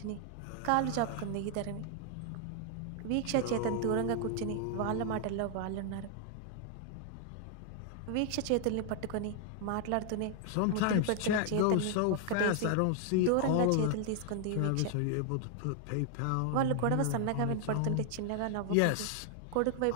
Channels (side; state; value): both; different; correlation 0.00